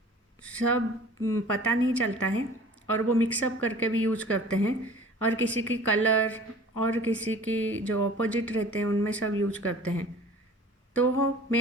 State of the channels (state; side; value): normal; both; correlation 0.46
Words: सब पता नहीं चलता है और वो मिक्सअप करके भी यूज करते हैं और किसी की कलर और किसी की जो अपोजिट रहते हैं उनमें सब यूज करते हैं। तो